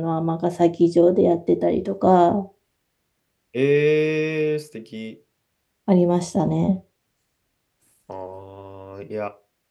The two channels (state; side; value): identical; both; correlation 1.00